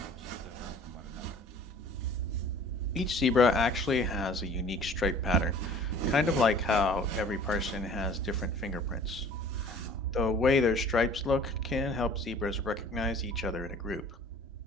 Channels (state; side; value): normal; both; correlation 0.49